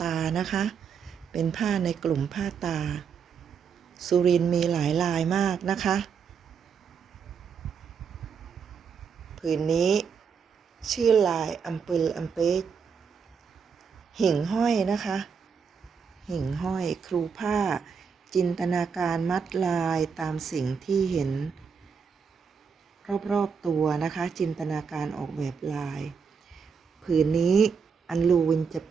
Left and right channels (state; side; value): quieter; left; 6.3 dB